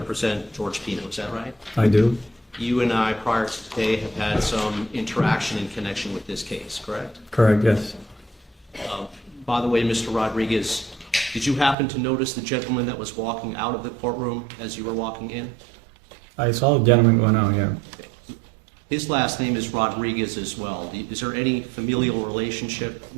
George Pino. Is that right? I do. You and I, prior to today, have had some interaction in connection with this case, correct? Correct, yes. By the way, Mr. Rodriguez, did you happen to notice the gentleman that was walking out of the courtroom as you were walking in? I saw a gentleman going out, yeah. His last name is Rodriguez as well. Is there any familial relationship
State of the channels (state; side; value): drops out; left; at 11.8 s